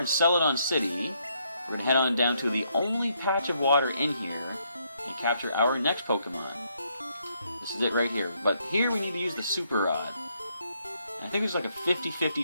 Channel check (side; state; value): both; inverted; correlation -0.74